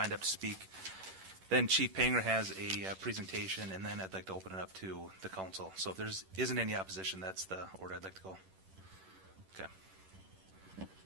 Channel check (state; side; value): late; left; 11 ms